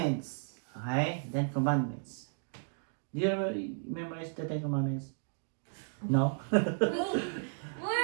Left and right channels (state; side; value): silent; left; digital silence